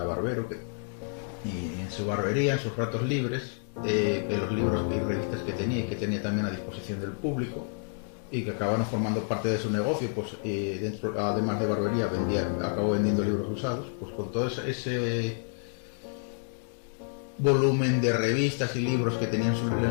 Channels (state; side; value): silent; right; digital silence